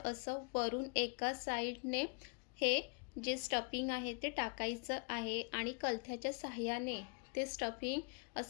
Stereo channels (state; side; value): quieter; right; 35.4 dB